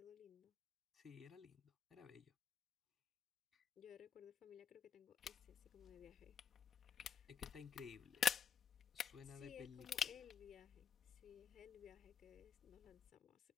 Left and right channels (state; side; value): quieter; right; 7.9 dB